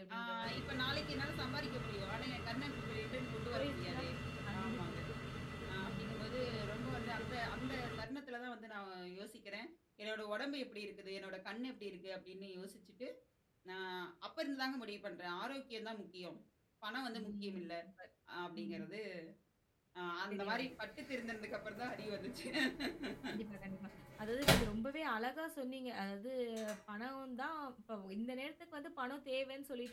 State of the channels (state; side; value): identical; both; correlation 1.00